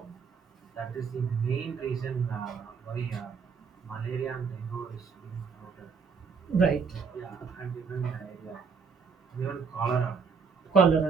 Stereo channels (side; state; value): left; quieter; 5.5 dB